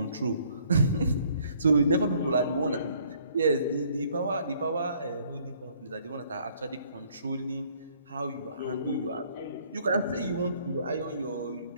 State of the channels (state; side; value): inverted; both; correlation -0.62